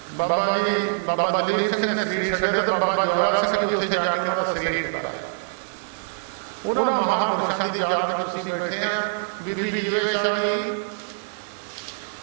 ਬਾਬਾ ਜੀ ਬਾਬਾ ਦਲੀਪ ਸਿੰਘ ਨੇ ਸਰੀਰ ਛੱਡਿਆ ਤੇ ਬਾਬਾ ਜਵਾਲਾ ਸਿੰਘ ਜੀ ਉੱਥੇ ਜਾ ਕੇ ਉਹਨਾਂ ਦਾ ਸਰੀਰ ਛੱਡਾਇਆ। ਉਹਨਾਂ ਮਹਾਂਪੁਰਸ਼ਾਂ ਦੀ ਯਾਦ ਵਿੱਚ ਤੁਸੀਂ ਬੈਠੇ ਆ। ਬੀਬੀ ਜੀਵੇ ਸ਼ਾਹ ਜੀ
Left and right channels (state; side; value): silent; left; digital silence